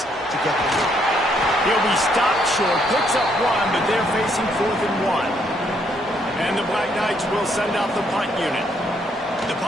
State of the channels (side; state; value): both; normal; correlation 0.71